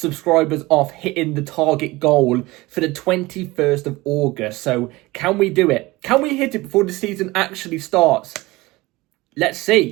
off hitting the target goal for the 21st of August. So can we do it? Can we hit it before the season actually starts? Let's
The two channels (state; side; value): quieter; left; 20.7 dB